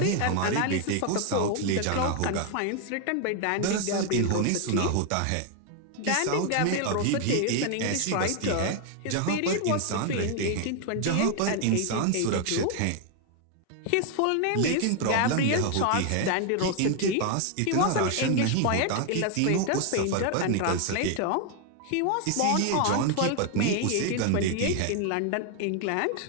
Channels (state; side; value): different; both; correlation 0.01